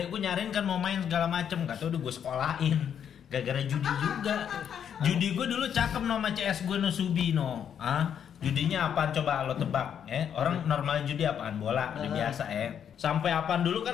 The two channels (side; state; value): right; quieter; 8.5 dB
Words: gue nyariin kan mau main segala macem, nggak tahu udah gue sekolahin. Gara-gara judi juga. Judi gue dulu cakep nama CS gue no Subino. Judinya apaan coba lo tebak? Orang normal judi apaan? Bola, udah biasa Sampai apaan dulu